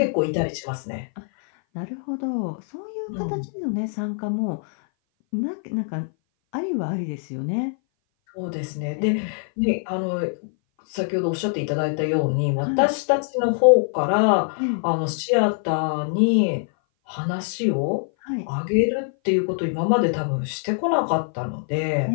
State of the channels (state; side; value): silent; right; 58 dB below the other